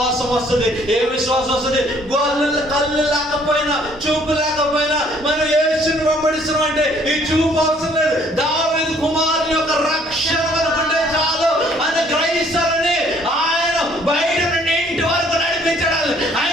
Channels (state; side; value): noise; left; hum, 27 dB below the sound